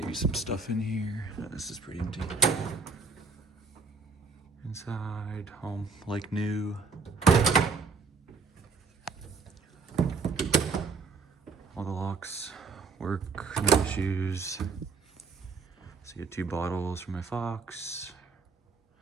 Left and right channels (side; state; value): left; quieter; 4.5 dB